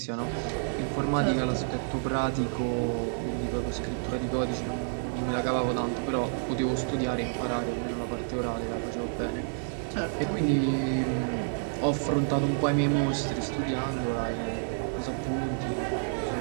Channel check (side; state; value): left; silent; digital silence